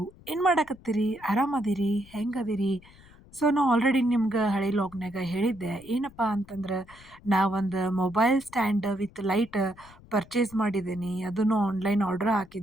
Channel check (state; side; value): noise; left; rumble, 24 dB below the sound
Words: ಏನ್ ಮಾಡಾಕತ್ತೀರಿ? ಆರಾಮದಿರಿ? ಹೆಂಗದಿರಿ? ನಾ ಆಲ್ರೆಡಿ ನಿಮ್ಗೆ ಹಳೆ ಲಾಗ್‌ನಾಗ ಹೇಳಿದ್ದೆ. ಏನಪ್ಪಾ ಅಂತಂದ್ರ, ನಾ ಒಂದು mobile stand with light purchase ಮಾಡಿದ್ದೀನಿ. ಅದನ್ನು ಆನ್‌ಲೈನ್ ಆರ್ಡರ್